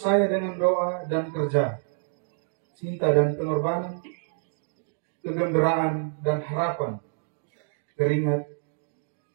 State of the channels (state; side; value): silent; left; digital silence